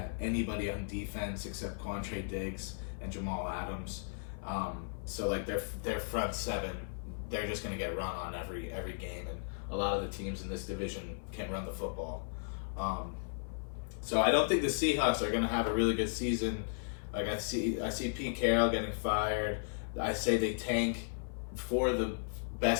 anybody on defense except Quantre Diggs and Jamal Adams. Their front seven, they're just going to get run on every game, and a lot of the teams in this division can run the football. So I don't think the Seahawks are going to have a really good season. I see Pete Carroll getting fired. I say they tank for the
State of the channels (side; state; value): right; silent; 54 dB below the other